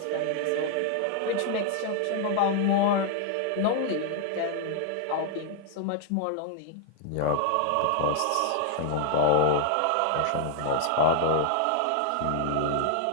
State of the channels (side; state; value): both; different; correlation -0.01